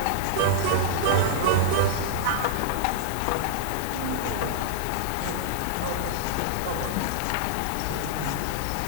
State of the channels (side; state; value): both; different; correlation -0.01